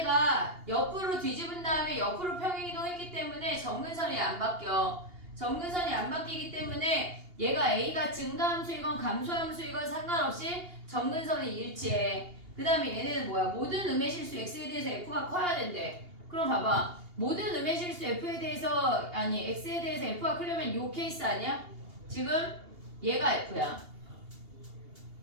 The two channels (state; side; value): late; left; 2.8 ms